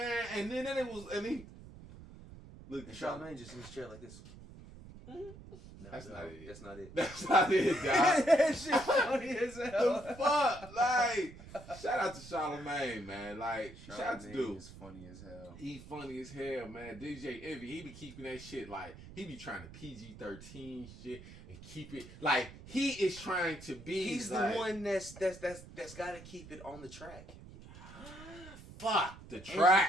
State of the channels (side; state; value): right; noise; rumble, 16 dB below the sound